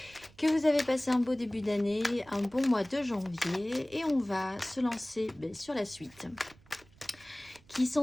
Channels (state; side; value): noise; right; rumble, 27 dB below the sound